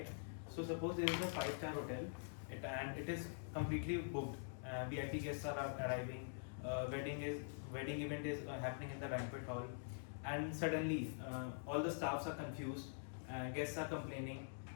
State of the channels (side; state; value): right; silent; digital silence